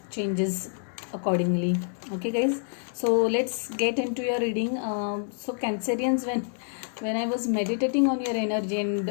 changes accordingly. Okay guys, so let's get into your reading. So Cancerians, when I was meditating on your energy and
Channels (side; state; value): right; silent; 60 dB below the other